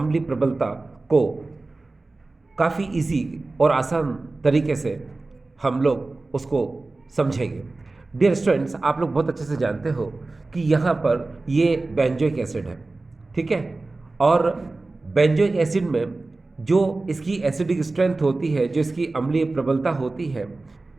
प्रबलता को काफ़ी इजी और आसान तरीके से हम लोग उसको समझेंगे। डियर स्टूडेंट्स, आप लोग बहुत अच्छे से जानते हो कि यहाँ पर ये बेंजोइक एसिड है, ठीक है। और बेंजोइक एसिड में जो इसकी एसिडिक स्ट्रेंथ होती है, जो इसकी अम्लीय प्रबलता होती है,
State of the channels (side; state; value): left; quieter; 3.3 dB